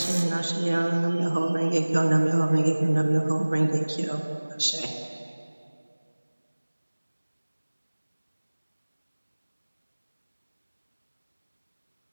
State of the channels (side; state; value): both; inverted; correlation -1.00